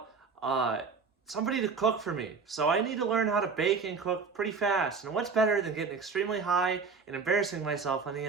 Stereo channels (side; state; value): left; quieter; 5.0 dB